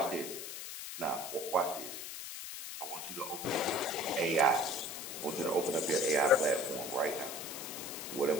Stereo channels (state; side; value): noise; left; hiss, 8 dB below the sound